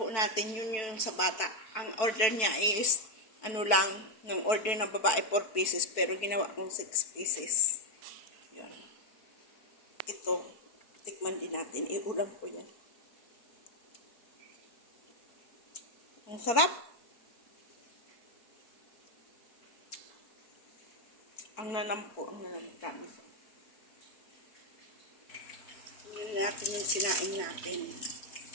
natin yun yung sa bata. Ang order niya is, ano lang, ng order ng babae 4 pieces, pero ginawa kong 6 pieces. Yun. Ito, tikman din natin. Iulam ko yan. Ang sarap. Ang nanam po, ang nanam. Promise. Tingnan natin yung sinaing natin.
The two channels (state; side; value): late; right; 4.6 ms